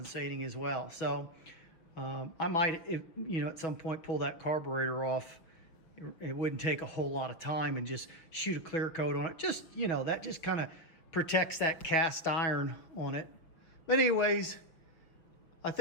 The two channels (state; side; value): late; right; 5.9 ms